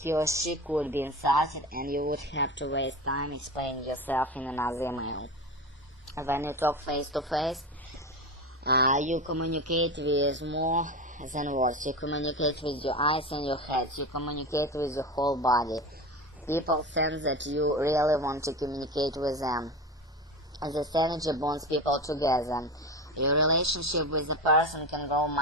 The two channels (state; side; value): normal; both; correlation 0.25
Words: He or she could be insulted, and you would have to waste time explaining yourself in another email. When you talk face-to-face, you communicate with more than words. You communicate with your eyes and your head. You communicate with your whole body. People sense that you really want to communicate with them. This energy bonds people together. Your relationship with the person can grow